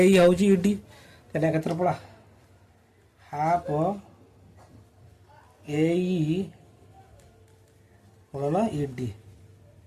ई होउची ईडी ताने क्षेत्रफल हाफ एई गुणन ईडी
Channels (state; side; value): identical; both; correlation 1.00